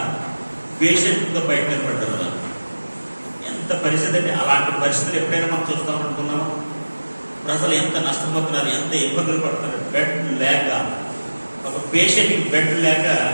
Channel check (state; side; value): inverted; both; correlation -1.00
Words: పేషెంట్తో బయట నిలబడ్డారు కదా. ఎంత పరిస్థితి అండి! అలాంటి పరిస్థితులు ఎప్పుడైనా మనం చూస్తామనుకున్నాము? ప్రజలు ఎంత నష్టపోతున్నారు, ఎంత ఇబ్బందులు పడుతున్నారు. బెడ్ లేక, ఒక పేషెంట్కి బెడ్ లేక